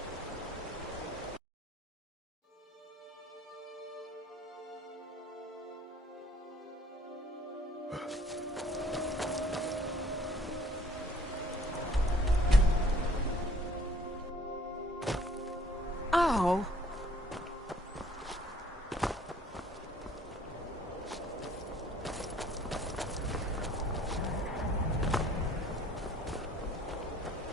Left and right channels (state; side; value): normal; both; correlation 0.57